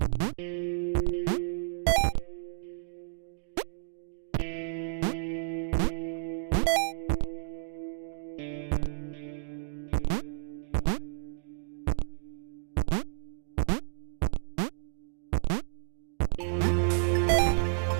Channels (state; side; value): silent; left; digital silence